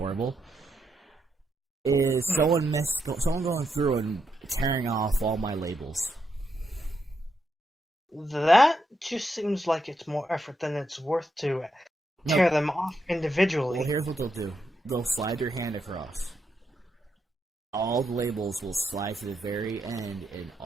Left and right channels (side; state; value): both; normal; correlation 0.81